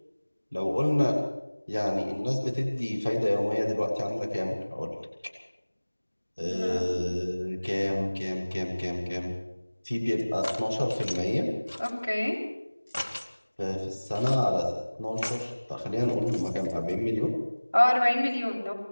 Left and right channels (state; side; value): inverted; both; correlation -1.00